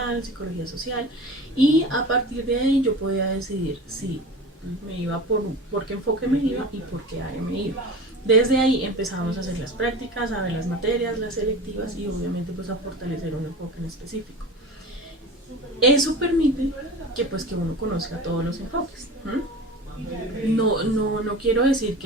psicología social, y a partir de ahí yo podía decidir si me iba por qué enfoque me iba y por qué área me iba. Desde ahí empezamos a hacer las prácticas, a ver las materias, las selectivas y obviamente pues a fortalecer un enfoque en específico. Eso permite que uno conozca todos los enfoques. No quiero decir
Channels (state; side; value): normal; both; correlation 0.34